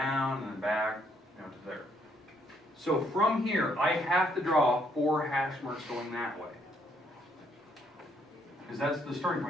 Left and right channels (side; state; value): both; normal; correlation 0.70